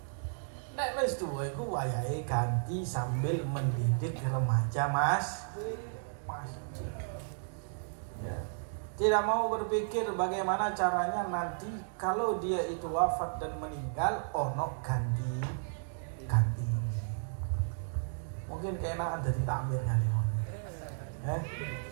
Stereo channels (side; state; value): left; silent; digital silence